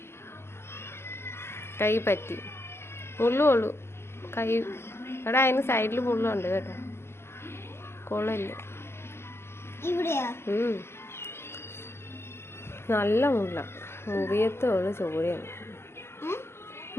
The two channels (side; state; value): right; late; 0.12 ms